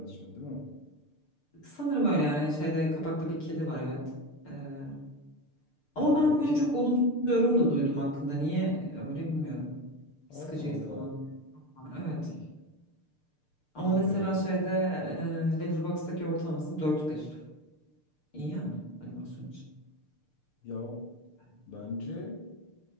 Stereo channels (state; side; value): late; right; 6.7 ms